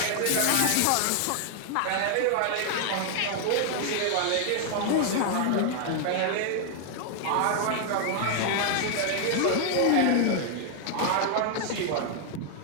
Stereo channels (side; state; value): both; different; correlation 0.00